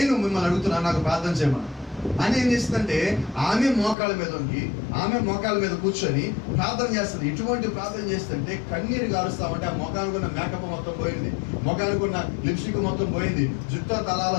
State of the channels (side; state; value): right; drops out; at 4.0 s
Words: మిమ్మల్ని అడుగుతున్నాను, నాకు ప్రార్థన చేయమని. అని ఏం చేస్తుందంటే ఆమె మోకాళ్ళ మీద కూర్చొని ప్రార్థన చేస్తుంది. ఇటువంటి ప్రార్థన చేస్తుంటే కన్నీరు గారుస్తామంటే ఆ మొఖానికి ఉన్న మేకప్ మొత్తం పోయింది, మొఖానికి ఉన్న లిప్స్టిక్ మొత్తం పోయింది, జుట్టు తలాల